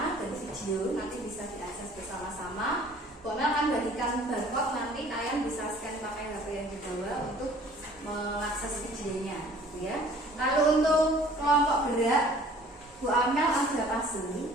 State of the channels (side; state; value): both; normal; correlation 0.52